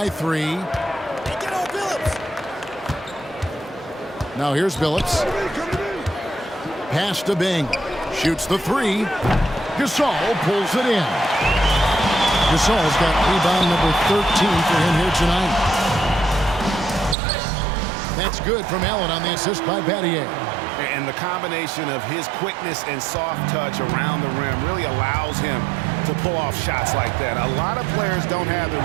3. Now here's Billups. Pass to Bing. Shoots the 3. Gasol pulls it in. Gasol's got rebound number 13 for him here tonight. That's good from Allen on the assist by Battier. And the combination of his quickness and soft touch around the rim really allows him to pull off shots like that. A lot of players don't have the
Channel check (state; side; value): drops out; left; at 17.2 s